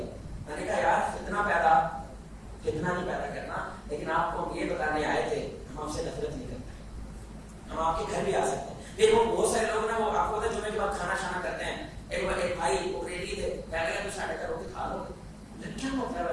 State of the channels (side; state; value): both; identical; correlation 1.00